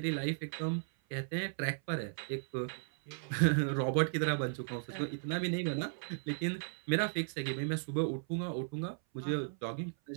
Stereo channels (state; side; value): silent; left; 54 dB below the other